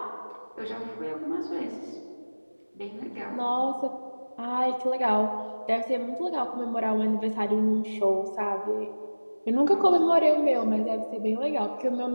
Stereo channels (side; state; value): both; inverted; correlation -1.00